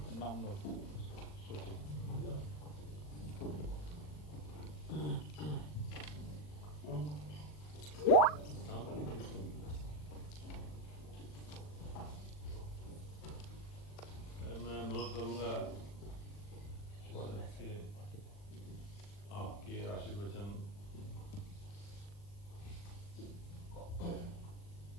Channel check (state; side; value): late; right; 40 ms